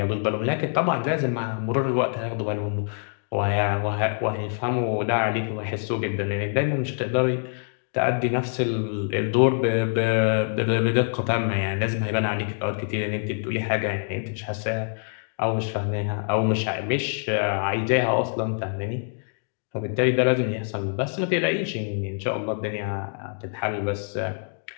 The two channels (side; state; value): right; silent; 61 dB below the other